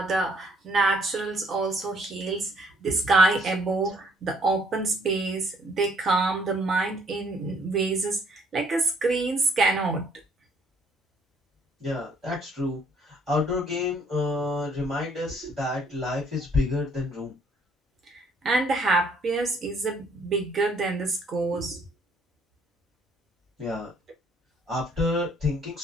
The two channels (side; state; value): both; normal; correlation 0.63